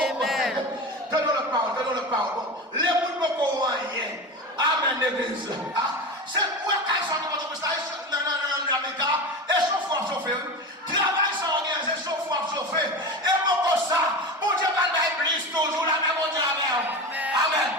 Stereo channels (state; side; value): normal; both; correlation 0.26